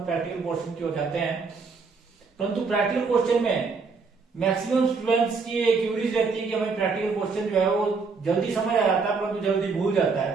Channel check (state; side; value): quieter; left; 4.7 dB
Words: प्रैक्टिकल पोर्शन की ओर जाते हैं। परंतु प्रैक्टिकल क्वेश्चन में मैक्सिमम स्टूडेंट्स की एक क्यूरीज रहती है कि हमें प्रैक्टिकल क्वेश्चन जो है वो जल्दी समझ आ जाता है परंतु जल्दी भूल जाता